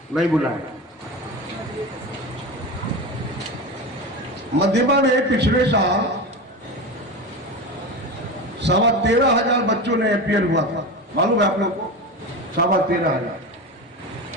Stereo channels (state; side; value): normal; both; correlation 0.25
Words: नहीं बुलाए। मध्यमा में पिछले साल 13,500 बच्चों ने अपीयर हुआ था, मालूम है आप लोग को? 13,500।